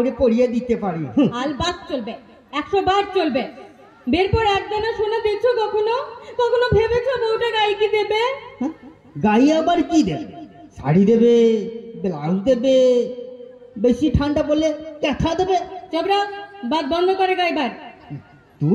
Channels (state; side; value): identical; both; correlation 1.00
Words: পরিয়ে দিতে পারি। আলবাত চলবে, 100 বার চলবে। বেরপর একদানা সোনা দেখছো কখনো ভেবেছো বউটা গায়ে কি দেবে? গায়ে আবার কি দেবে? শাড়ি দেবে, ব্লাউজ দেবে, বেশি ঠান্ডা পড়লে ক্যাথা দেবে। চবরা, বাদ বন্ধ করে গাইবার।